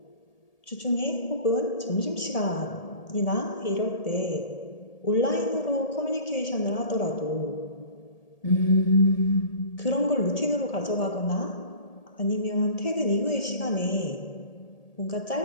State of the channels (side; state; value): right; late; 1.8 ms